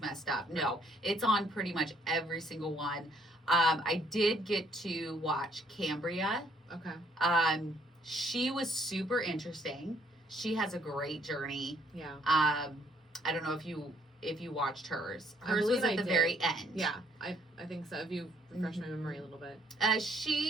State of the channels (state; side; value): normal; both; correlation 0.66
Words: up. No, it's on pretty much every single one. I did get to watch Cambria. Okay. She was super interesting. She has a great journey. Yeah. I don't know if you watched hers. I Hers believe was at I the did. very end. Yeah, I think so. If you refresh my memory a little bit.